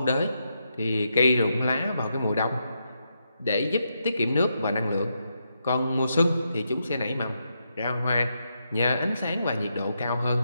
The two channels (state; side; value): inverted; both; correlation -0.82